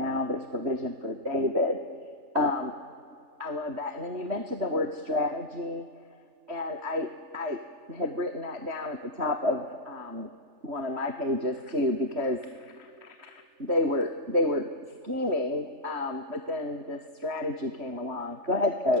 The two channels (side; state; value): left; late; 3.4 ms